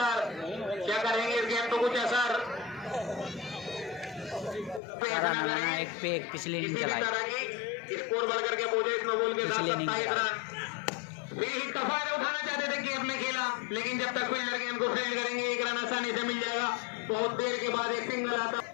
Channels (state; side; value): drops out; right; at 4.8 s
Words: क्या करेंगे इस गेंद को कुछ असर एक पे एक पिछले इनिंग चलाई। स्कोर बढ़ करके पहुंचे इस नो बॉल के साथ 27 रन। एक दफा उठाना चाहते थे गेम में खेला, लेकिन जब तक फील्डर गेंद को फील्ड करेंगे 1 रन आसानी से मिल जाएगा। बहुत देर के बाद एक सिंगल आता।